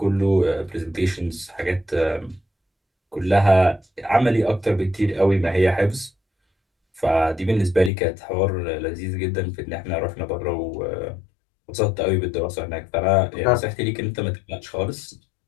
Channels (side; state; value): right; drops out; at 7.9 s